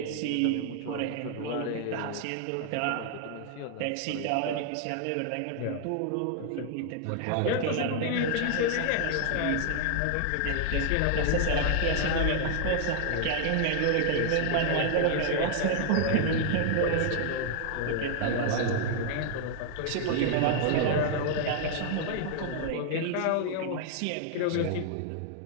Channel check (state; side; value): different; both; correlation 0.00